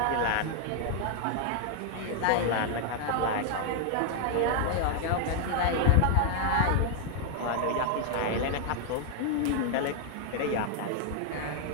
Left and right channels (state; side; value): different; both; correlation 0.00